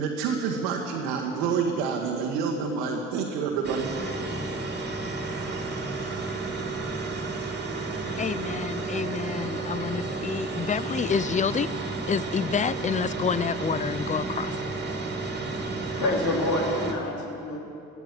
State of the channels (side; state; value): both; normal; correlation 0.34